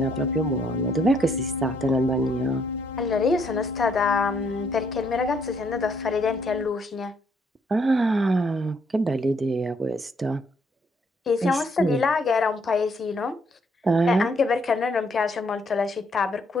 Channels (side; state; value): both; normal; correlation 0.70